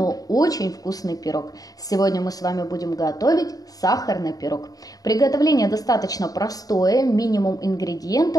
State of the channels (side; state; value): right; late; 0.18 ms